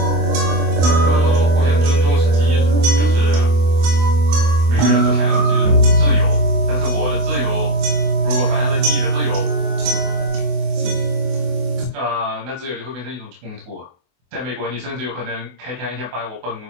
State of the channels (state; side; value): late; left; 24 ms